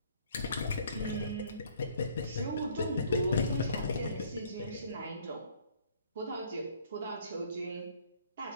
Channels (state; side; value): inverted; both; correlation -0.59